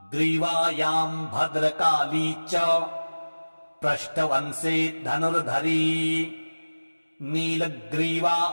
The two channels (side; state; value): both; inverted; correlation -1.00